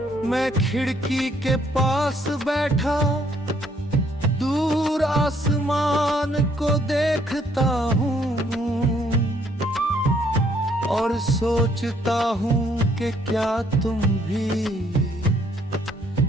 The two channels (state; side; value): normal; both; correlation 0.67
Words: मैं खिड़की के पास बैठा दूर आसमान को देखता हूँ और सोचता हूँ कि क्या तुम भी